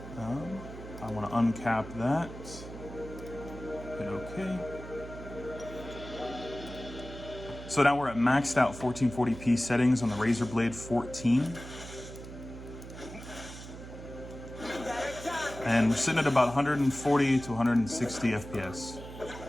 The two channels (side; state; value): right; noise; hum, 13 dB below the sound